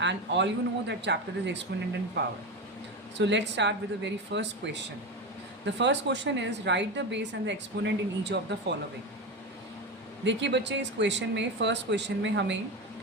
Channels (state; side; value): normal; both; correlation 0.19